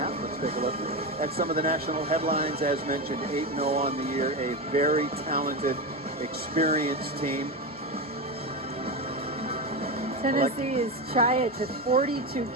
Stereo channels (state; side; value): normal; both; correlation 0.16